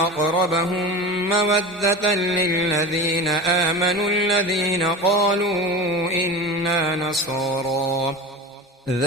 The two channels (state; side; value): normal; both; correlation 0.30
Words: مودة للذين آمنوا الذين قالوا إنا نصارى